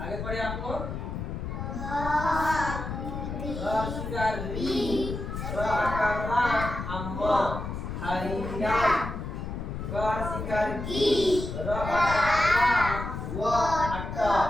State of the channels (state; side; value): noise; left; rumble, 6 dB below the sound